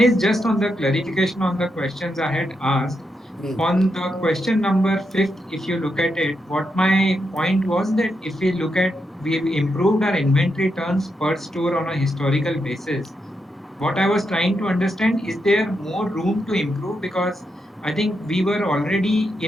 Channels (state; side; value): normal; both; correlation 0.83